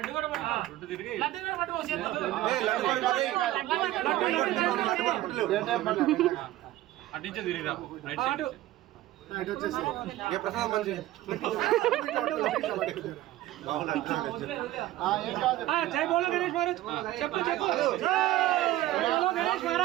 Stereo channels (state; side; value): quieter; left; 15.3 dB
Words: కూడా పట్టు అటించే తిరిగిరా అటు ఏ ప్రసాదం మంచి జై బోలో గణేష్ మహారాజ్ చెప్పు చెప్పు జై బోలో గణేష్